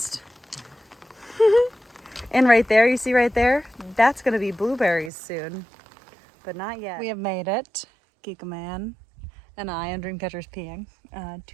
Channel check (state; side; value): drops out; left; at 5.1 s